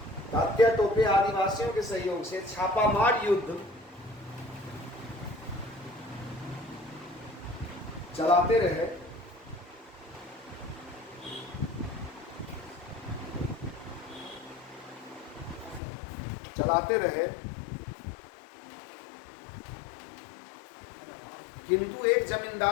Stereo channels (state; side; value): drops out; right; at 15.8 s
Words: तात्या टोपे आदिवासियों के सहयोग से छापामार युद्ध चलाते रहे, किंतु एक